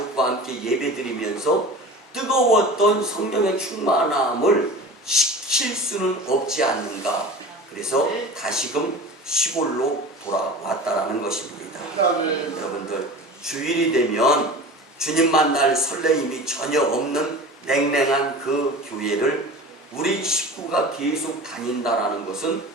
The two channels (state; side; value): normal; both; correlation 0.36